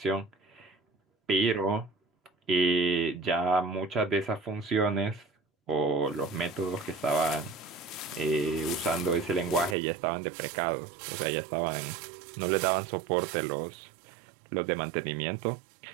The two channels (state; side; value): drops out; left; at 9.8 s